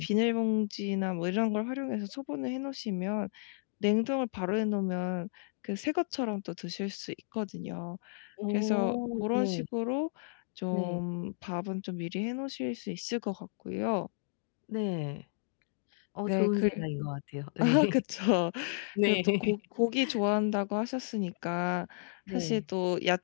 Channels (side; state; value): right; silent; digital silence